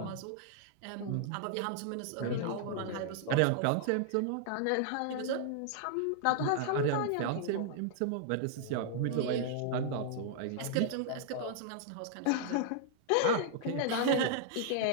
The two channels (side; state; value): both; different; correlation -0.01